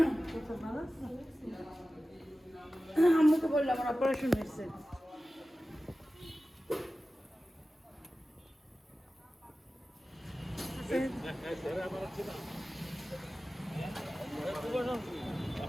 ভালো আছে, আম্মুকে বললাম আমার অপারেশন হয়েছে।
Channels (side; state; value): both; normal; correlation 0.95